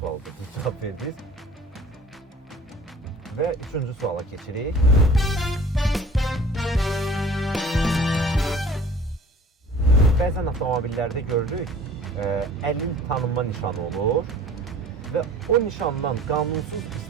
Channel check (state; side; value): normal; both; correlation 0.47